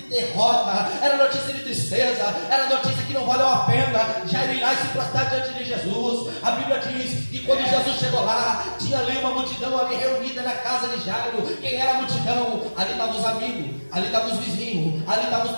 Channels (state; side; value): inverted; both; correlation -1.00